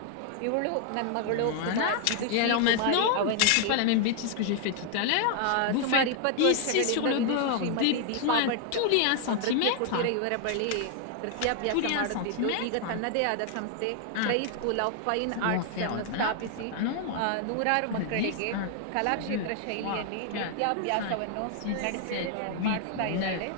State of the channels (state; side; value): different; both; correlation 0.00